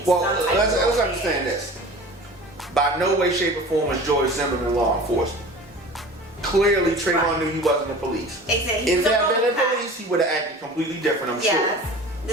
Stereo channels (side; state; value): both; normal; correlation 0.39